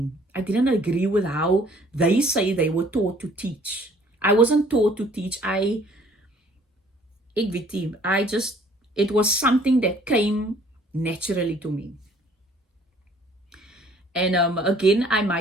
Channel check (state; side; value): normal; both; correlation 0.57